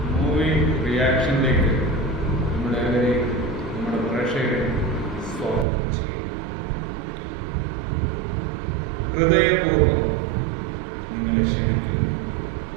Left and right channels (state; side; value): drops out; left; at 5.7 s